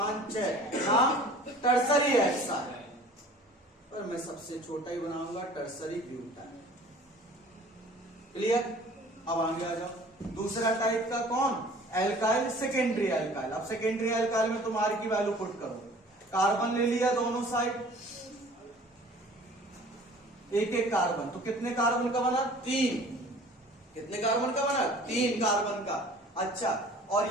6, नाम टर्सरी ऐसा है, पर मैं सबसे छोटा ही बनाऊंगा टर्सरी ब्यूटाइल। क्लियर। अब आगे आ जाओ दूसरा टाइप का कौन एल्काइल सेकेंडरी एल्काइल। अब सेकेंडरी एल्काइल में तुम R की वैल्यू पुट करो, कार्बन ले लिया दोनों साइड, एक एक कार्बन, तो कितने कार्बन का बना 3, कितने कार्बन का बना 3 कार्बन का। अच्छा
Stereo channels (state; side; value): normal; both; correlation 0.48